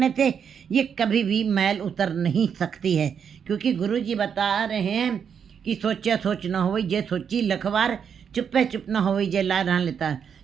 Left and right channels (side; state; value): left; quieter; 7.4 dB